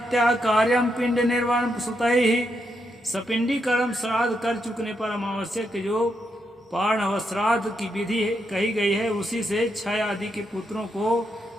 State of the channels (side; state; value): both; normal; correlation 0.81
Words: कार्यम पिंड निर्वाण सुतैहि। सपिंडी कर्म श्राद्ध कर चुकने पर अमावस्या के जो पार्ण श्राद्ध की विधि कही गई है उसी से क्षय आदि के पुत्रों को